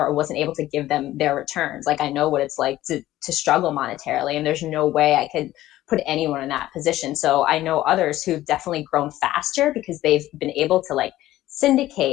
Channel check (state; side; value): quieter; right; 15.0 dB